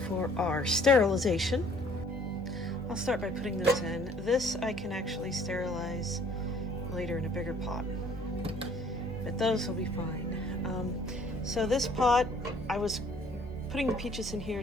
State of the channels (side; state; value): both; normal; correlation 0.57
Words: our sterilization. I'll start by putting those in. This I can actually sterilize later in a bigger pot, but those will be fine. So this pot, I was putting the peaches in here